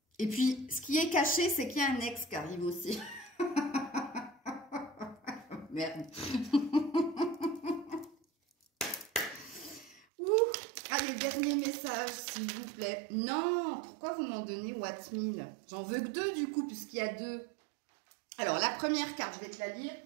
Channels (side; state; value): left; drops out; at 10.1 s